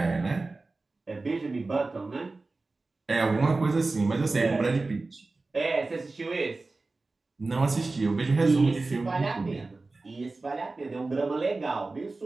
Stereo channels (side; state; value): left; quieter; 3.5 dB